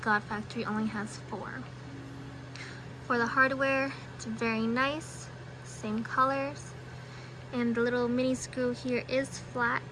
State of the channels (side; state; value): both; identical; correlation 1.00